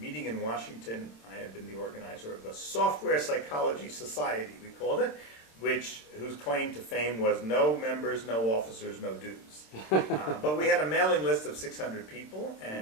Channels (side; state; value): right; late; 27 ms